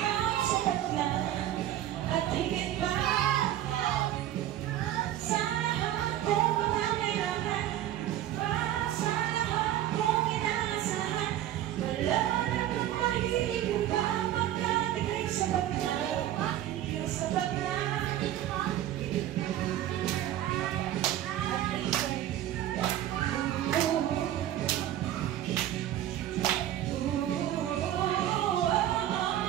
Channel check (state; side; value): quieter; left; 12.4 dB